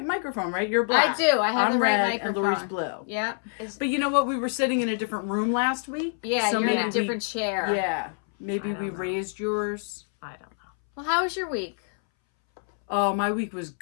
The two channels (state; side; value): silent; right; 61 dB below the other